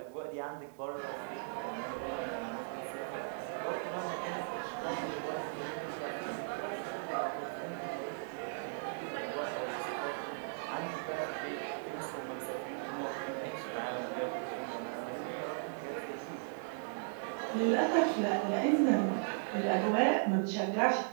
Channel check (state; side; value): silent; left; 53 dB below the other